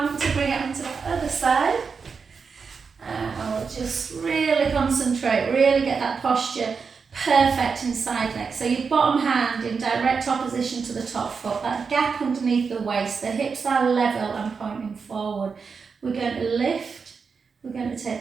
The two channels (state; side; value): quieter; left; 5.4 dB